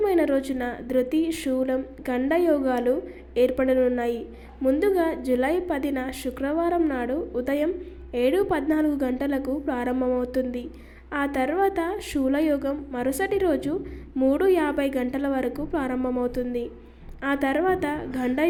రోజున ధృతి, శూలం, గండ యోగాలు ఏర్పడనున్నాయి. ముందుగా జూలై 10న శుక్రవారం నాడు ఉదయం 7:14 గంటలకు ప్రారంభమవుతుంది. ఆ తర్వాత శూలయోగం మరుసటి రోజు 3:50 గంటల వరకు ప్రారంభమవుతుంది. ఆ తర్వాత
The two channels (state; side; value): identical; both; correlation 1.00